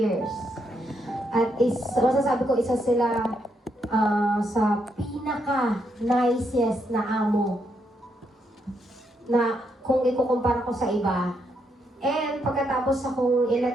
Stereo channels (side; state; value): both; normal; correlation 0.78